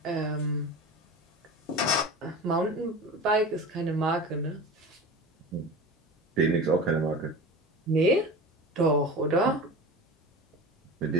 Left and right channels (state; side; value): normal; both; correlation 0.32